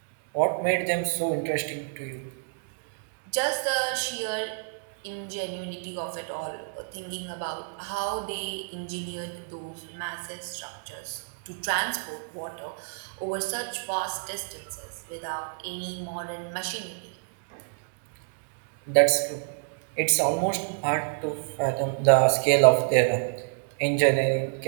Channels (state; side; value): silent; left; digital silence